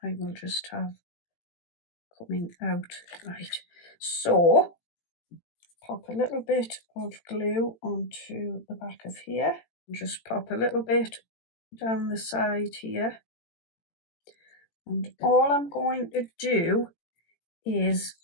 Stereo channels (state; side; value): late; right; 18 ms